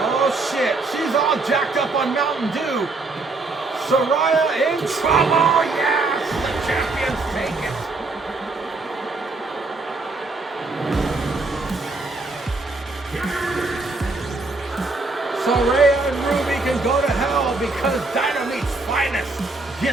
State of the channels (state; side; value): quieter; left; 3.5 dB